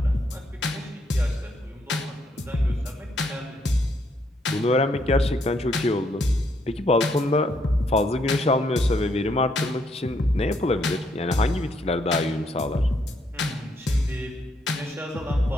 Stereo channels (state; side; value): normal; both; correlation 0.73